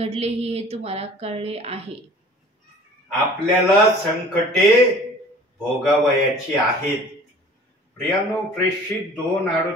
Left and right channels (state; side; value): normal; both; correlation 0.47